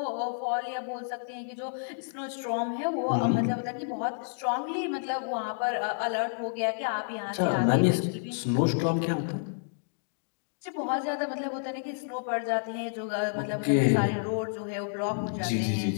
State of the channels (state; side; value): silent; right; digital silence